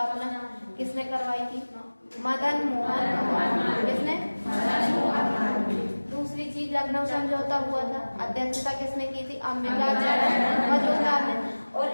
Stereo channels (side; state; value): both; inverted; correlation -1.00